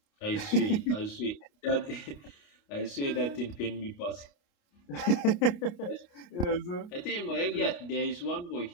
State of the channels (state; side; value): late; right; 28 ms